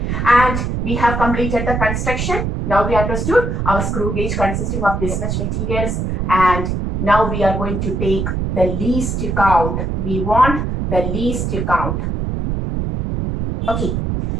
And we have completed the construction. Now we understood our screw gauge consisting of this much materials, and now we are going to take the least count. We want the least count. Okay.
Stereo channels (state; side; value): noise; right; rumble, 1 dB below the sound